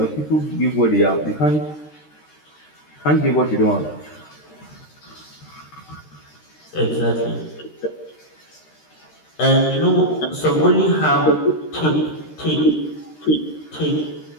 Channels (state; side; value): late; right; 13 ms